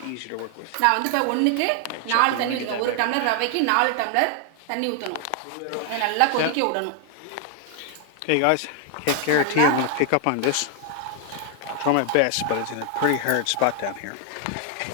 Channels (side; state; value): both; different; correlation 0.00